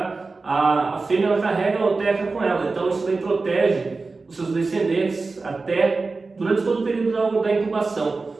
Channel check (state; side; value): quieter; left; 3.9 dB